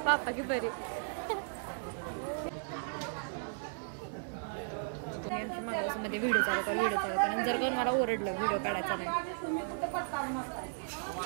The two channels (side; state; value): left; silent; digital silence